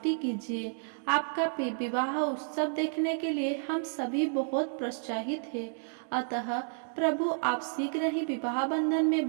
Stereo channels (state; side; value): silent; left; digital silence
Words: कीजिए। आपका विवाह उत्सव देखने के लिए हम सभी बहुत प्रोत्साहित हैं। अतः प्रभु आप शीघ्र ही विवाह बंधन में